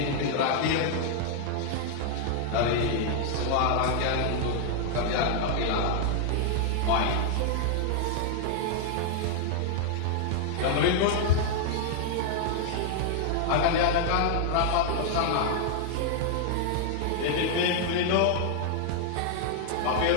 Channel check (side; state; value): both; different; correlation -0.01